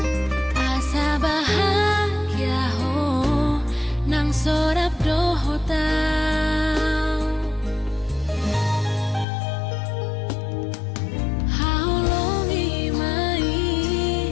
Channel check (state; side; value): drops out; right; at 9.2 s